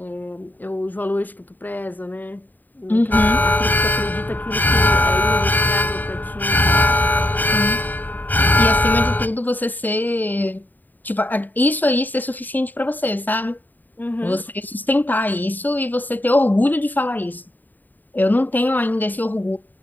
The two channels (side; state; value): right; late; 0.088 ms